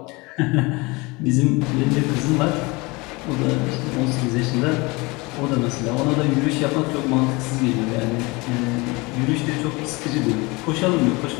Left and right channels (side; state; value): right; quieter; 25.0 dB